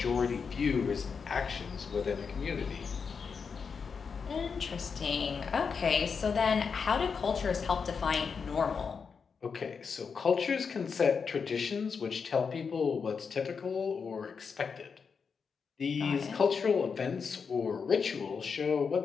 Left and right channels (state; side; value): quieter; right; 5.8 dB